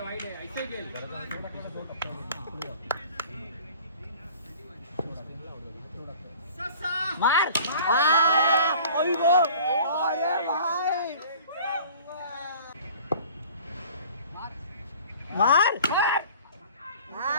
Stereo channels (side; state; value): both; inverted; correlation -0.46